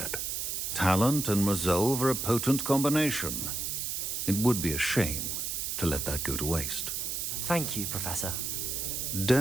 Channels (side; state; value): right; noise; hiss, 2 dB below the sound